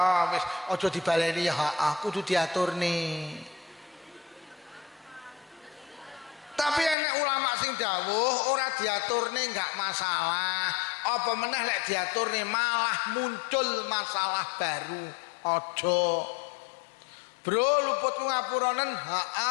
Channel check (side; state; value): right; drops out; at 7.0 s